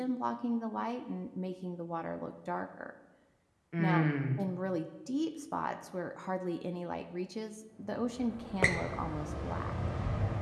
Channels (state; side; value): identical; both; correlation 1.00